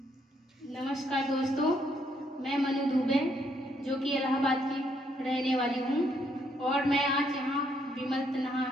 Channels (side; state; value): both; normal; correlation 0.72